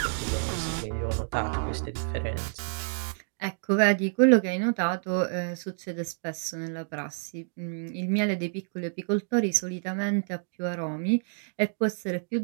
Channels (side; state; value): left; silent; digital silence